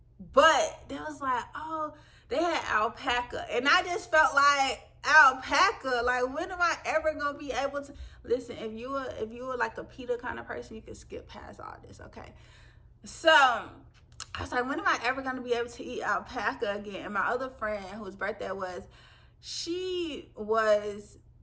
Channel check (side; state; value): both; identical; correlation 1.00